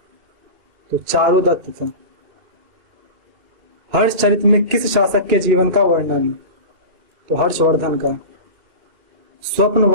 तो चारुदत्त था। हर्ष चरित में किस शासक के जीवन का वर्णन? तो हर्षवर्धन का।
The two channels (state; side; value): late; left; 2.4 ms